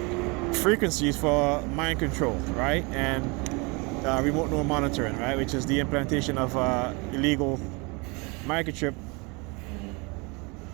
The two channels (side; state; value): left; quieter; 28.8 dB